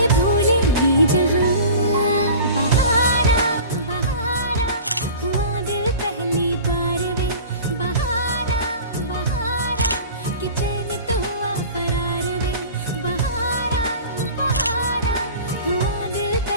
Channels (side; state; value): both; inverted; correlation -0.39